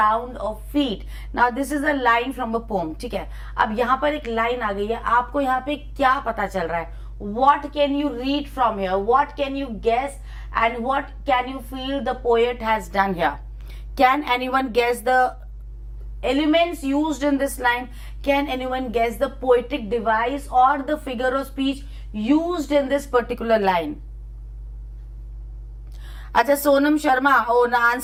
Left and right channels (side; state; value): both; identical; correlation 1.00